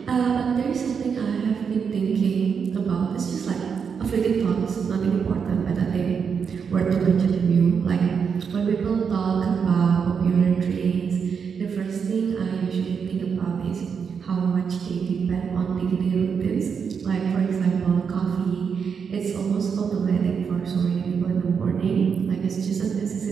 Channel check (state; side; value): quieter; left; 6.4 dB